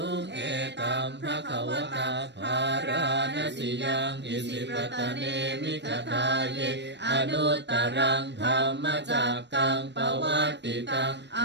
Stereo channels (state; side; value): late; left; 0.51 ms